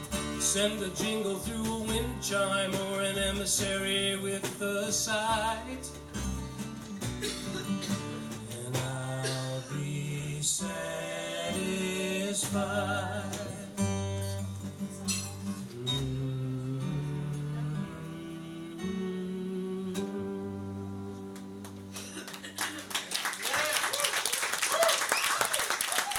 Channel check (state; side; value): identical; both; correlation 1.00